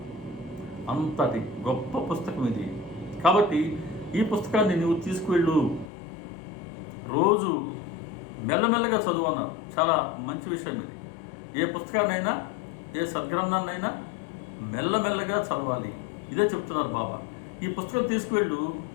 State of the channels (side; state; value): right; drops out; at 5.9 s